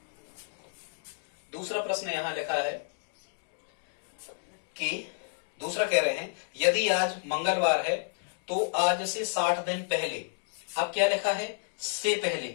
दूसरा प्रश्न यहां लिखा है कि दूसरा कह रहे हैं यदि आज मंगलवार है तो आज से 60 दिन पहले। अब क्या लिखा है, से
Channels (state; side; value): silent; right; digital silence